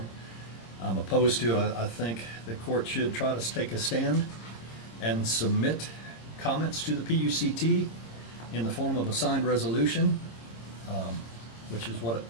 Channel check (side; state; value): right; late; 26 ms